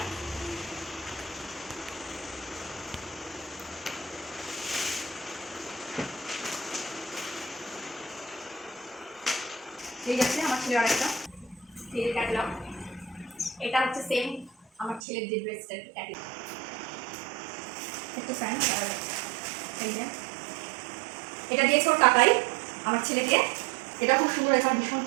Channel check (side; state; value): left; drops out; at 15.0 s